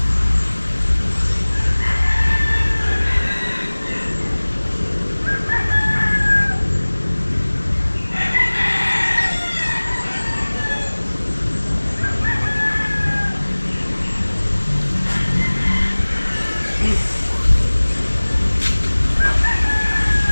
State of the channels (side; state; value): both; inverted; correlation -1.00